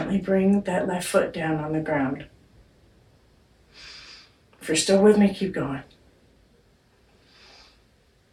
bring that left foot down on the ground. If you're still with me, keep going.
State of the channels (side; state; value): both; identical; correlation 1.00